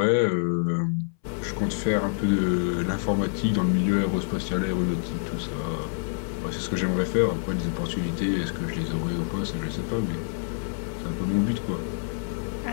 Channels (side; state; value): right; silent; 60 dB below the other